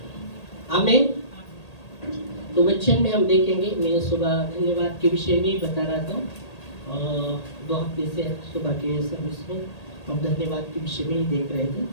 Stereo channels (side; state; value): right; late; 1.8 ms